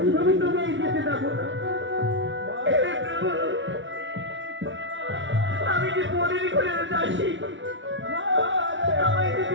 আমি তোমায় যেতে দেবো না। আমি যে পরের ঘরে যাচ্ছি, আমায়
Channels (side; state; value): left; late; 0.55 ms